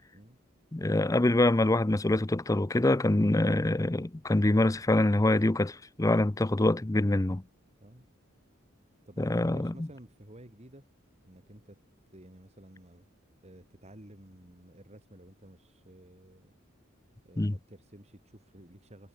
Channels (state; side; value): normal; both; correlation 0.83